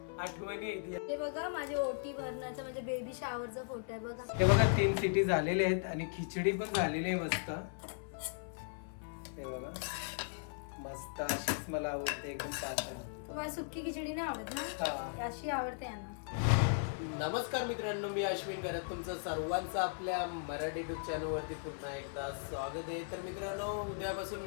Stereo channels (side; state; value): right; silent; 53 dB below the other